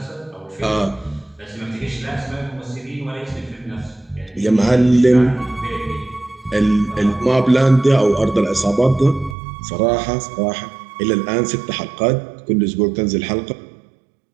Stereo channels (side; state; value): left; drops out; at 9.3 s